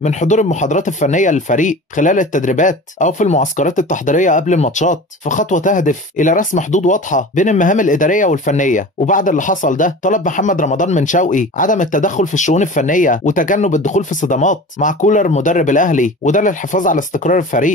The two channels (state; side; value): normal; both; correlation 0.36